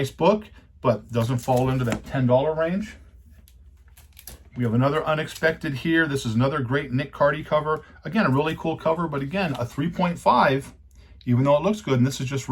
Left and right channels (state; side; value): identical; both; correlation 1.00